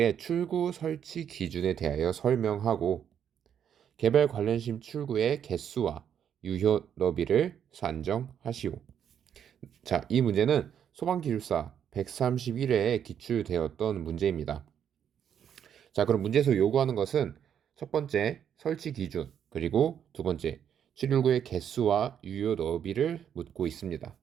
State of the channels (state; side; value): quieter; left; 8.8 dB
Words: 출구 설치 기준에 대하여 설명하고 개발 관련심 출구의 개수와 유효 너비를 산정하시오. 자, 이 문제는 소방기술사 131회에 기출되었던 문제입니다. 자, 그럼 문제에서 요구하는 것은 첫 번째 설치 기준, 그리고 두 번째 출구의 개수와 유효 너비를 묻고 있습니다.